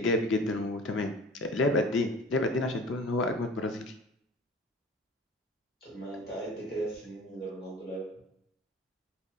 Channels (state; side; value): normal; both; correlation 0.42